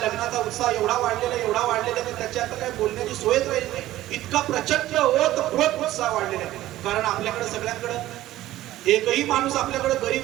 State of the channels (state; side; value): quieter; left; 15.0 dB